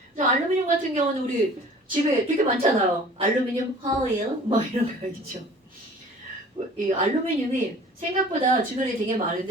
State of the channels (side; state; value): both; normal; correlation 0.47